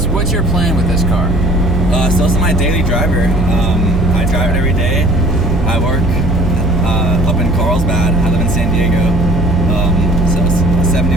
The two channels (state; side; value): normal; both; correlation 0.50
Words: your plan with this car? So this is my daily driver. I drive it every day. I work up in Carlsbad. I live in San Diego. So it's 70